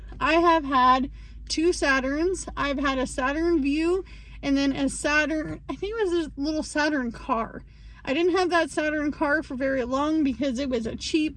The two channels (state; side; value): identical; both; correlation 1.00